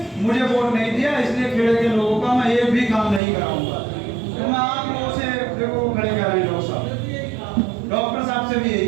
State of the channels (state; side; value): drops out; left; at 3.2 s